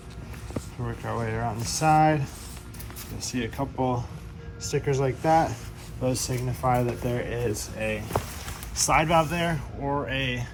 Work our way around the side. You'll see a couple stickers like that. Those signify that there is a slide valve there or a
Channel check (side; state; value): both; identical; correlation 1.00